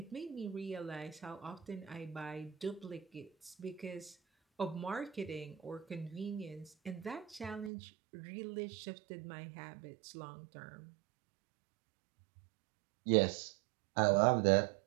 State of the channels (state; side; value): drops out; left; at 7.7 s